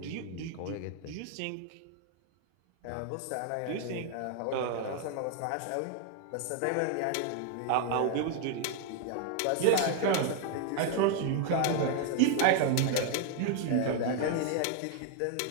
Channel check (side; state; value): both; different; correlation 0.00